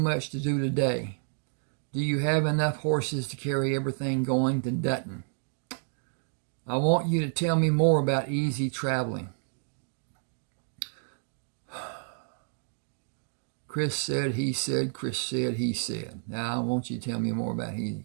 to do today. Do you have enough horses to carry everything going to Dutton? I want you to tell me more about easy traveling. Chris said, he said, Chris said, he said. Now I want you to tell me more about easy.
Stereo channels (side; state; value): left; silent; digital silence